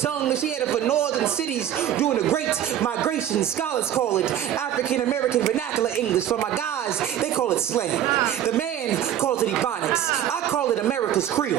she had it for northern cities during the Great Migration. Scholars call it African-American vernacular English. For my guys, they call it slang. The man calls it Ebonics. I call it America's Creole.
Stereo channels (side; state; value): left; quieter; 10.8 dB